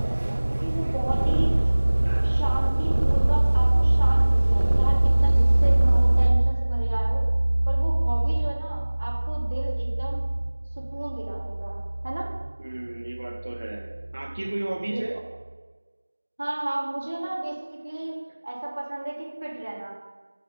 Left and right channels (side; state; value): both; inverted; correlation -1.00